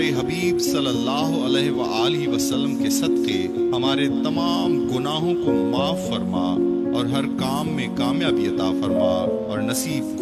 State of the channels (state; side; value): identical; both; correlation 1.00